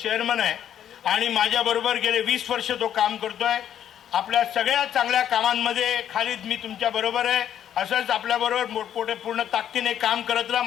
आहे आणि माझ्याबरोबर गेले 20 वर्ष तो काम करतोय। आपल्या सगळ्या चांगल्या कामांमध्ये खालिद मी तुमच्या बरोबर आहे, असंच आपल्याबरोबर मोठमोठे पूर्ण ताकदीने काम करत राहा,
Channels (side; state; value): right; quieter; 10.0 dB